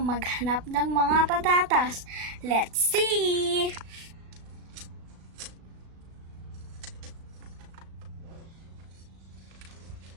maghanap ng mga patatas. Let's see!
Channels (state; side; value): late; left; 36 ms